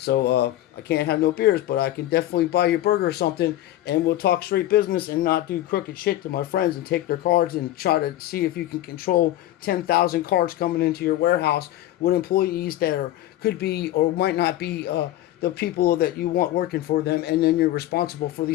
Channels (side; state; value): right; quieter; 14.2 dB